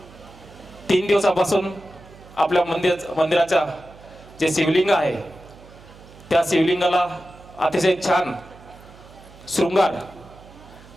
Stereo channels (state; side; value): noise; right; hum, 22 dB below the sound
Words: 3 दिवसापासून आपल्या मंदिराच्या जे शिवलिंग आहे त्या शिवलिंगाला अतिशय छान शृंगार,